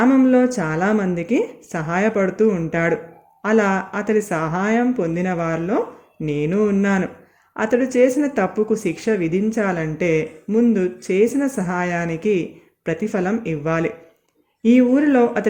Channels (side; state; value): both; identical; correlation 1.00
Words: చాలామందికి సహాయపడుతూ ఉంటాడు. అలా అతడి సహాయం పొందిన వారిలో నేను ఉన్నాను. అతడు చేసిన తప్పుకు శిక్ష విధించాలంటే ముందు చేసిన సహాయానికి ప్రతిఫలం ఇవ్వాలి. ఈ ఊరిలో